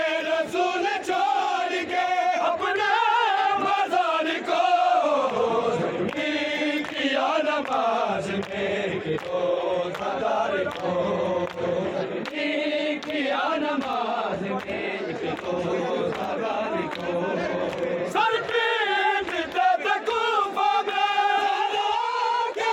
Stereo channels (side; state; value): both; identical; correlation 1.00